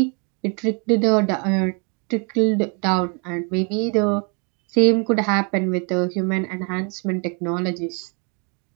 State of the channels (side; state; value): left; quieter; 36.1 dB